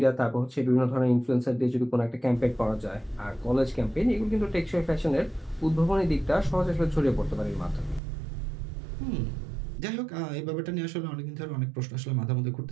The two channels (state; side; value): drops out; left; at 8.0 s